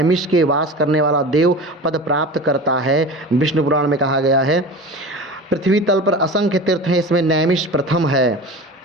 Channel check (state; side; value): normal; both; correlation 0.33